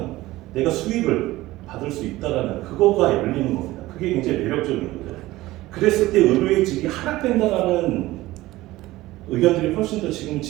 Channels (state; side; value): quieter; left; 17.7 dB